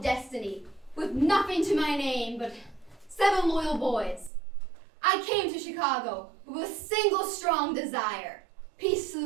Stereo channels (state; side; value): drops out; left; at 4.3 s